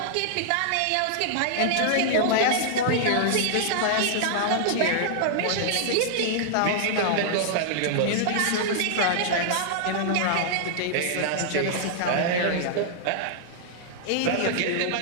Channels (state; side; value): different; both; correlation -0.01